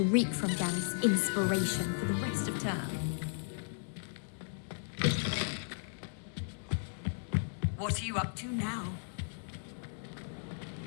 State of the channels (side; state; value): right; silent; digital silence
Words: reek from Gareth's inspiration for the rest of term. What are you up to now?